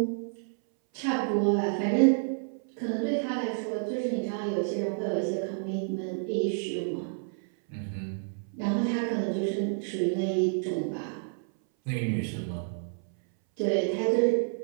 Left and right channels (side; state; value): left; silent; 58 dB below the other